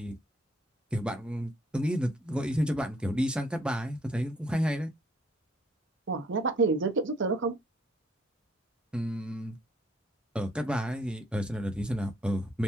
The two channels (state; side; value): normal; both; correlation 0.66